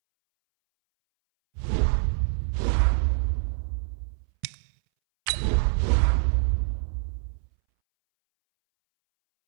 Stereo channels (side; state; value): left; silent; 61 dB below the other